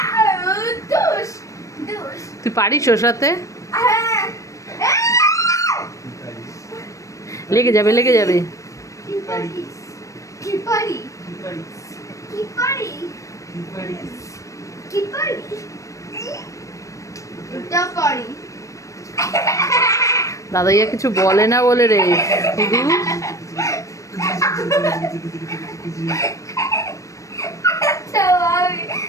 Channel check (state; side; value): late; right; 0.15 ms